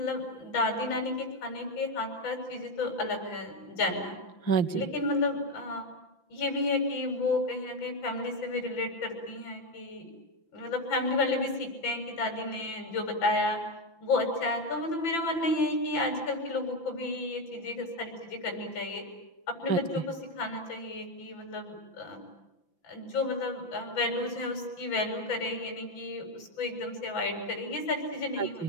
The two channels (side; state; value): right; late; 5.9 ms